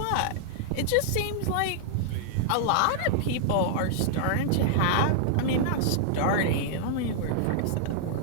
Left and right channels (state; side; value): different; both; correlation -0.01